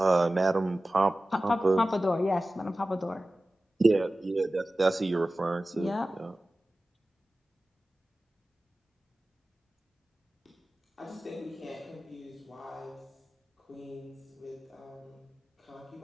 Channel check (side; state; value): both; normal; correlation 0.96